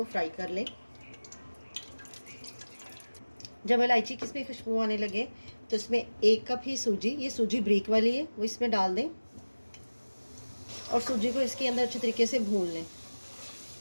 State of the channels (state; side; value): inverted; both; correlation -1.00